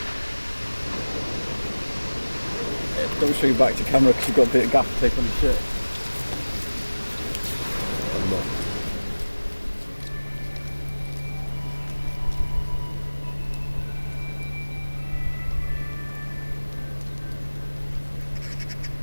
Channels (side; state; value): both; inverted; correlation -1.00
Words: Don't show you back to camera because you've got a bit of gaffer tape on your shirt. I'm not.